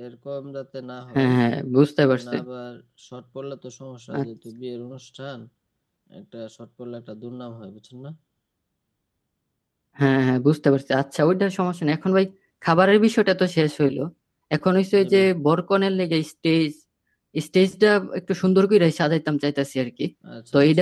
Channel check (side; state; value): both; identical; correlation 1.00